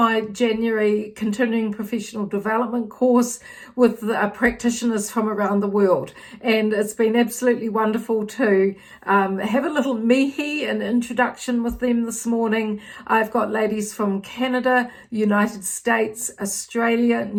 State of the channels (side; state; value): both; identical; correlation 1.00